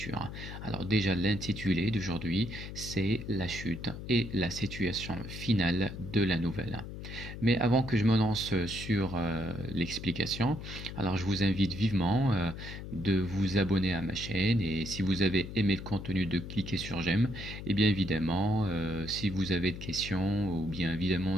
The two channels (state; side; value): noise; left; hum, 9 dB below the sound